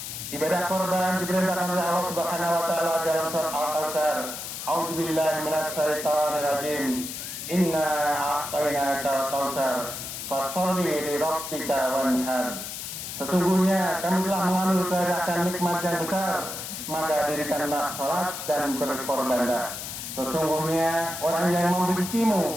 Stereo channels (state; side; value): noise; left; hiss, 7 dB below the sound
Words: Ibadah korban diperintahkan oleh Allah Subhanahu wa taala dalam surat Al-Kautsar. A'udzu billahi minasy syaithanir rajim. Inna a'tainakal kautsar fasholli li rabbika wanhar. Sesungguhnya kami telah menganugerahkan nikmat yang besar, maka dirikanlah salat dan berkorbanlah. Sesungguhnya orang yang